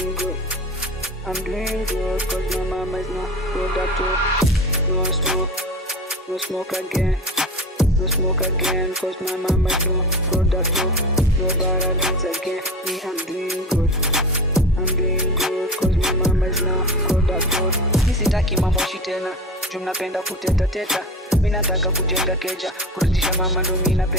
good, cause my mama is not product. No smoke again. No smoke again, cause my mama is no product. No bara beats again. Me, I'm doing good, cause my mama is no product. Sitaki mamoshi tena, juu mnapenda kuteta teta. Mimi nataka kujenga keja, kurudisha mama ndo mimi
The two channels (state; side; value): normal; both; correlation 0.31